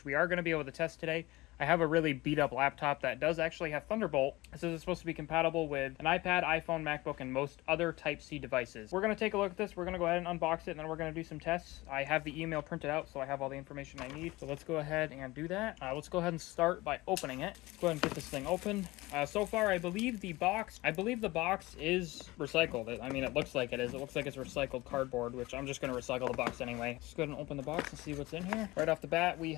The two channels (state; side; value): quieter; right; 20.4 dB